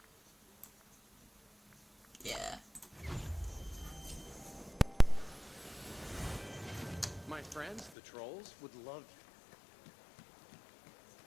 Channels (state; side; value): drops out; right; at 7.9 s